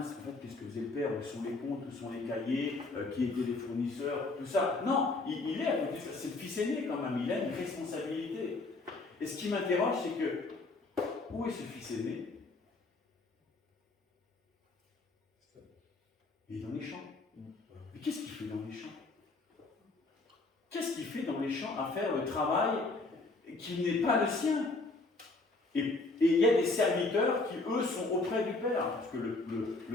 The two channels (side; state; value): right; quieter; 3.3 dB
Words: en fait, qu'est-ce que faisait le père, où sont les comptes, où sont les cahiers, qui étaient les fournisseurs, tout ça. Non, il est à côté de ça. C'est le fils aîné quand même, il a une responsabilité. Et ce qui m'interroge, c'est que, où est ce fils aîné? Il est dans les champs. Mais qu'est-ce qu'il fait dans les champs? Qu'est-ce qu'il fait dans les champs à faire le travail qui n'est pas le sien? Et il y a des serviteurs qui, eux, sont auprès du Père. Parce que